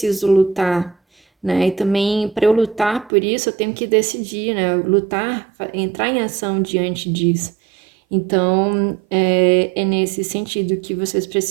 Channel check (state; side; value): drops out; left; at 3.1 s